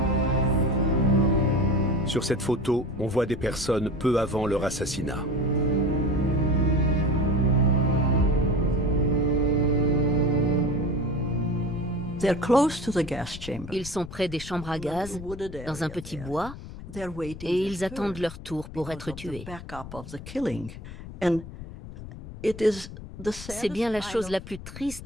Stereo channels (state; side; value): noise; left; rumble, 12 dB below the sound